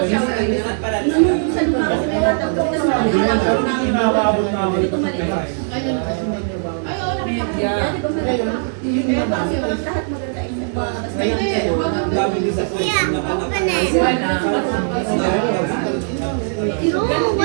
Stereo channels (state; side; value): silent; left; 67 dB below the other